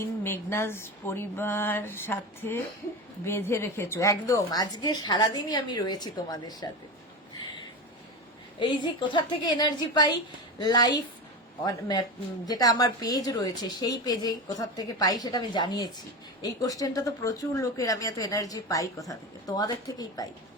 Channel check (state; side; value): normal; both; correlation 0.23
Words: মেঘনাজ পরিবার সাথে বেঁধে রেখেছো। একদম, আজকে সারাদিনই আমি রয়েছি তোমাদের সাথে। এই যে কোথা থেকে এনার্জি পাই, লাইফ যেটা আমার পেজ রয়েছে সেই পেজে কোথা থেকে পাই সেটা আমি জানিয়েছি। এই কোশ্চেনটা তো প্রচুর লোকের, আমি এত এনার্জি পাই কোথা থেকে? তোমাদের থেকেই পাই।